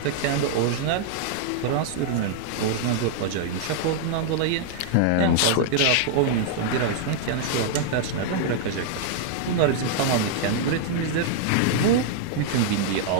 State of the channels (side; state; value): both; different; correlation -0.01